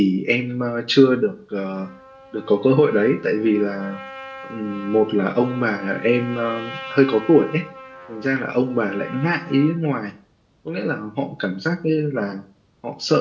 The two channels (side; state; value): both; identical; correlation 1.00